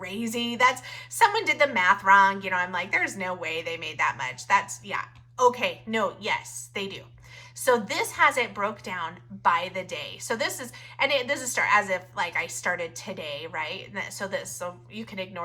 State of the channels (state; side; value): identical; both; correlation 1.00